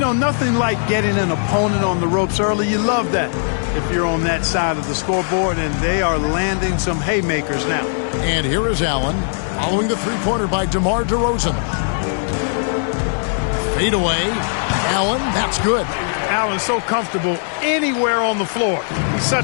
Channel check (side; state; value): right; silent; 63 dB below the other